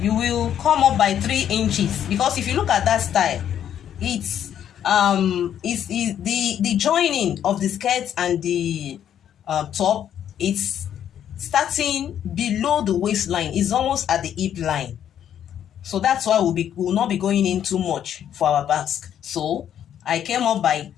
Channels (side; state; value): right; quieter; 9.8 dB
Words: will come up by 3 inches, because if you look at that style, it's the joining of the skirt and the top, it's starting below the waistline. It's almost at the hip line. So that's why we'll not be going in too much for our basque. So I came up by